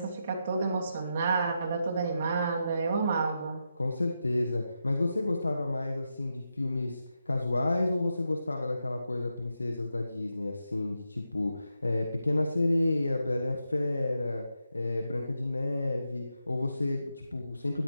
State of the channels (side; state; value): both; inverted; correlation -0.86